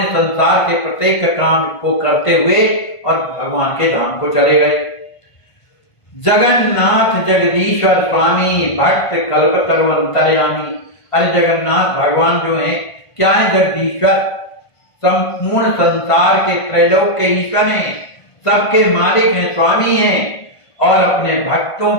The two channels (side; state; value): right; late; 1.5 ms